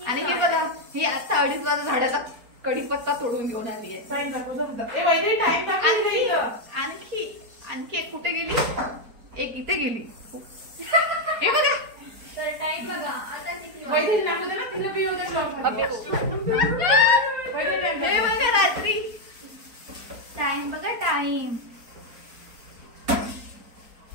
आणि हे बघा ही आता 2:30 वाजता झाडाचा कढीपत्ता तोडून घेऊन आली आहे. आणखी एक कुठे गेली, एक इथे गेली. हे बघा टाइम बघा आता हे बघा रात्री टाइम बघा टाइम.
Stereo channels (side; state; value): left; late; 4.3 ms